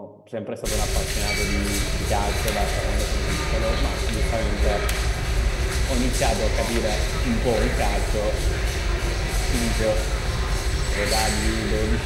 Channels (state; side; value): identical; both; correlation 1.00